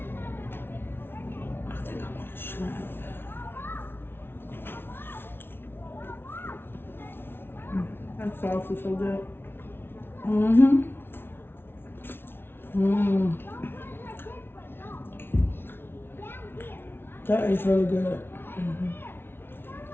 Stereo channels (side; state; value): right; late; 0.11 ms